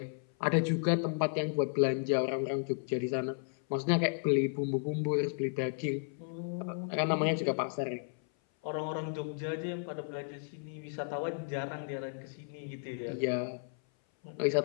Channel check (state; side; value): silent; right; 55 dB below the other